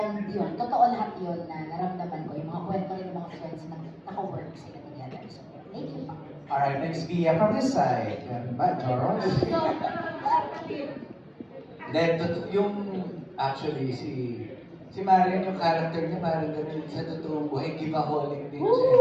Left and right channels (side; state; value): both; identical; correlation 1.00